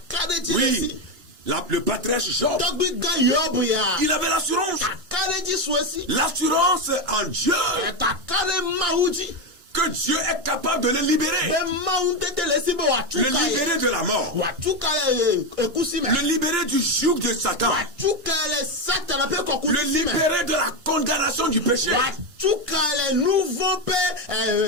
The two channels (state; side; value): late; left; 2.9 ms